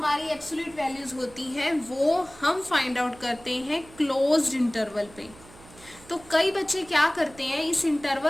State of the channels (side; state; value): right; noise; hum, 22 dB below the sound